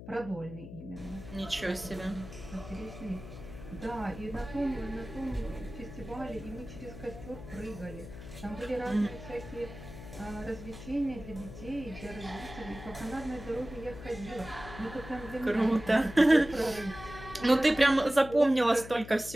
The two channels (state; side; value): noise; left; hum, 13 dB below the sound